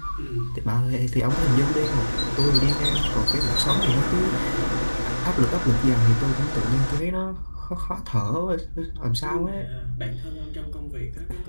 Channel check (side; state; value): both; inverted; correlation -1.00